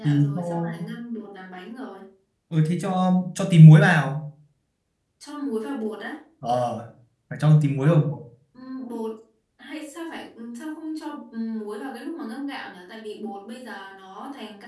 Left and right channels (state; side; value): identical; both; correlation 1.00